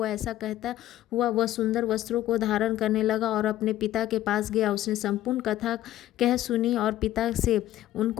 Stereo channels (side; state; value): right; quieter; 13.8 dB